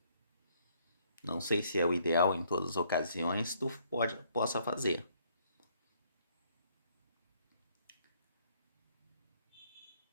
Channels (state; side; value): inverted; both; correlation -0.67